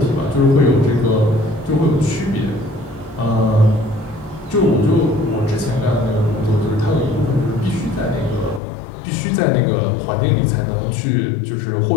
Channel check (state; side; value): drops out; right; at 8.6 s